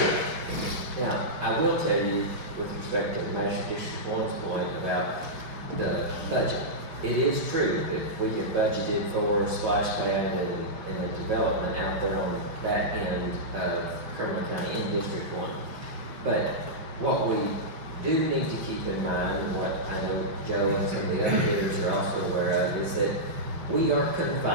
Now, I will tell you, with respect to Master District 1's point about the budget, it is true that we have budgeted for splash pad and the development out there on that end of Cumberland County in District 1. But what we do need to keep in mind, and what I know Joe and some of the other bidders are also aware of, is that we are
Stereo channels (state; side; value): late; left; 5.4 ms